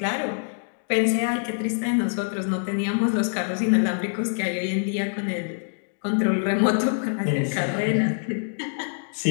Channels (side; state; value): right; silent; digital silence